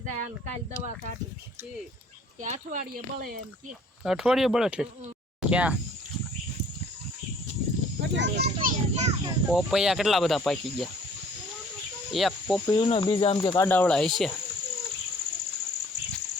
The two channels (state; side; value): normal; both; correlation 0.56